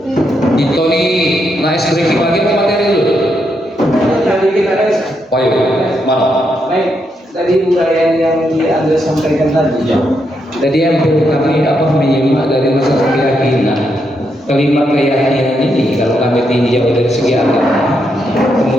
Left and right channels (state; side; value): normal; both; correlation 0.80